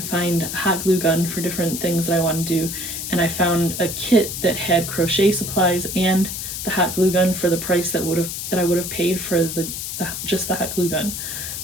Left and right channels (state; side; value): noise; left; hiss, 5 dB below the sound